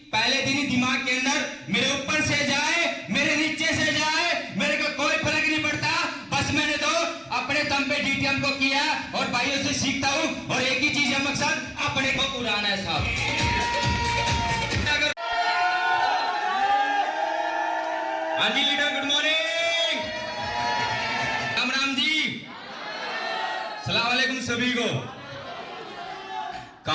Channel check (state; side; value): identical; both; correlation 1.00